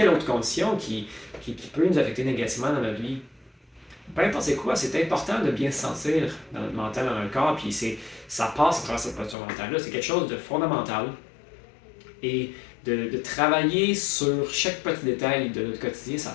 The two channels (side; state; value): right; drops out; at 9.3 s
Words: autre condition qui peut nous affecter négativement dans notre vie. Peu importe c'est quoi, c'est important de bien se sentir dans notre mental, dans notre corps, puis ça passe à travers cette posture mentale-là. C'est quelque chose de fondamental. Et de travailler sur chaque petit détail de notre quotidien,